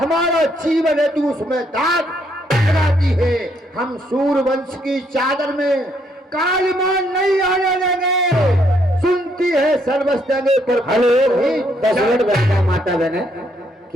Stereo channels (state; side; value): normal; both; correlation 0.71